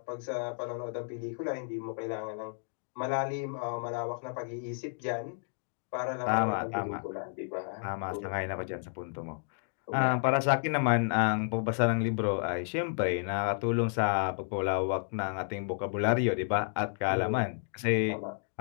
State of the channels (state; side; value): silent; right; digital silence